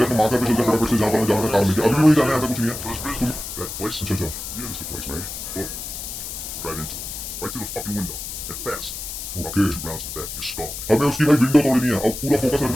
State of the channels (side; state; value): left; noise; hiss, 8 dB below the sound